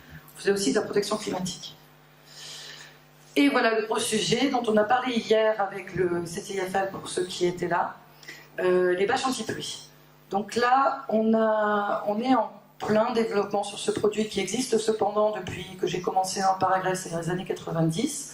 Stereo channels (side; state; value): both; identical; correlation 1.00